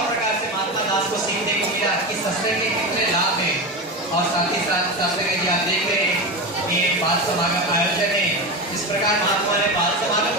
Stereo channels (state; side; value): normal; both; correlation 0.21